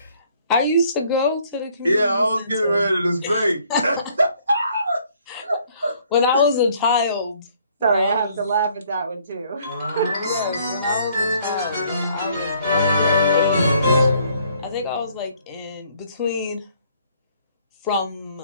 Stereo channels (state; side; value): inverted; both; correlation -0.63